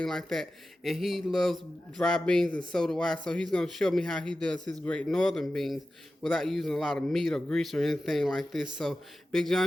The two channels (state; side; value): normal; both; correlation 0.94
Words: like that. And he loves dry beans and so do I. So he's gonna show me how he does his great northern beans without using a lot of meat or grease or anything like this. So Big